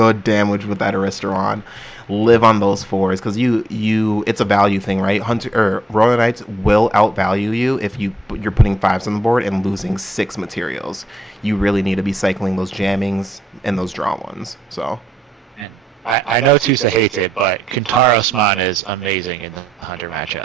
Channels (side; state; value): both; normal; correlation 0.80